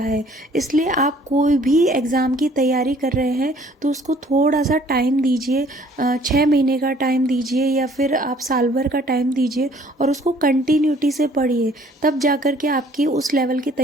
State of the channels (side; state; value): both; normal; correlation 0.57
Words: इसलिए आप कोई भी एग्ज़ाम की तैयारी कर रहे हैं तो उसको थोड़ा सा टाइम दीजिए, 6 महीने का टाइम दीजिए या फिर आप साल भर का टाइम दीजिए और उसको कंटिन्यूटी से पढ़िए, तब जाकर के आपकी उस लेवल की